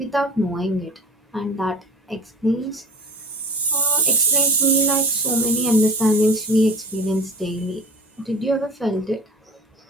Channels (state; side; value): normal; both; correlation 0.37